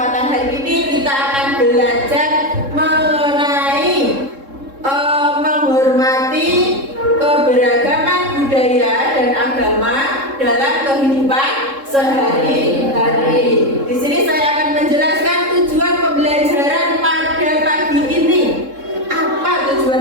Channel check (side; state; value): left; late; 3.7 ms